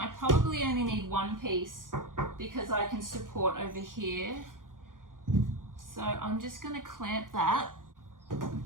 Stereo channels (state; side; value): late; left; 0.90 ms